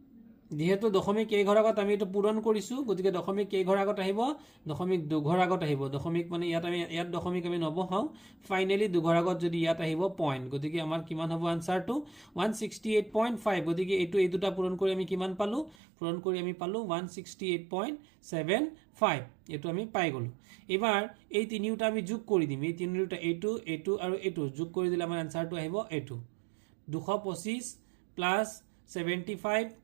যেহেতু দশমিক কেই ঘৰ আগত আমি এটো পূৰণ কৰিছো গতিকে দশমিক কেই ঘৰ আগত আহিব দশমিক 2 ঘৰ আগত আহিব দশমিক মানে ইয়াত দশমিক আমি নবহাও ফাইনালি 2 ঘৰ আগত যদি ইয়াত আহিব পইণ্ট গতিকে আমাৰ কিমান হ'ব আনসাৰটো 168.5 গতিকে এই দুটা পূৰণ কৰি আমি কিমান পালো পূৰণ কৰি আমি পালো 168.75 এটো আমি পাই গলো এবাৰ এই তিনিটা আমি যোগ কৰি দিম এই তিনিটা এইটো আৰু এইটো যোগ কৰি দিলে আমাৰ আনসাৰটো আহিব এইটো 225 প্লাস 75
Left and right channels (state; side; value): drops out; left; at 15.8 s